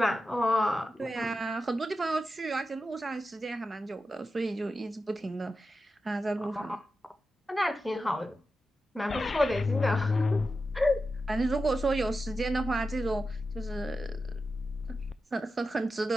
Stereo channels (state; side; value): normal; both; correlation 0.90